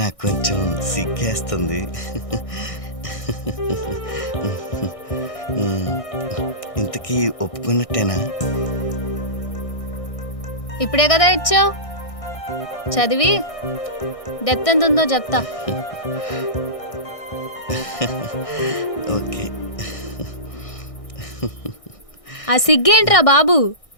నాకు కొంచెం సిగ్గేస్తుంది. ఇంతకీ ఒప్పుకున్నట్టేనా? ఇప్పుడే కదా ఇచ్చావు, చదివి డెప్త్ ఎంత ఉందో చెప్తా. ఓకే. ఆ సిగ్గేంట్రా బాబు,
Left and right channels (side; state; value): right; late; 1.6 ms